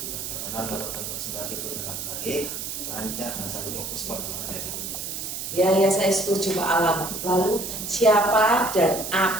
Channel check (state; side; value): noise; right; hiss, 6 dB below the sound